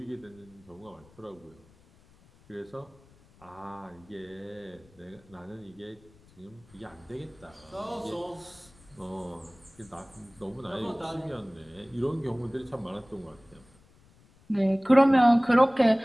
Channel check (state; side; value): noise; left; rumble, 28 dB below the sound